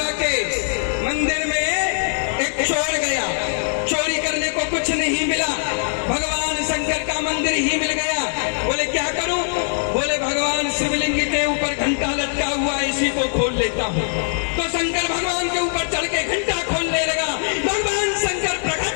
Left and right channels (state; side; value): silent; right; 61 dB below the other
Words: के मंदिर में एक चोर गया, चोरी करने को कुछ नहीं मिला, भगवान शंकर का मंदिर ही मिल गया। बोले क्या करूं? बोले भगवान शिवलिंग के ऊपर घंटा लटका हुआ है, इसी को खोल लेता हूं। तो शंकर भगवान के ऊपर चढ़ के घंटा खोलने लगा। भगवान शंकर